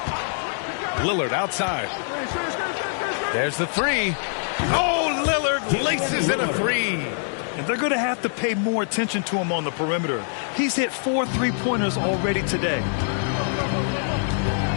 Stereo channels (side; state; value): right; silent; digital silence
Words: Lillard outside. There's the 3. Oh, Lillard laces in a 3. And they're going to have to pay more attention to him on the perimeter. He's hit 4 3-pointers already today.